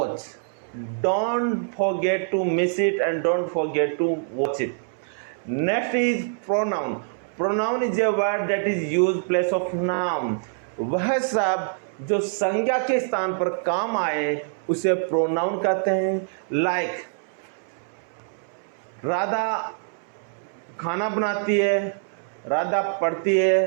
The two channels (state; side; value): silent; left; 62 dB below the other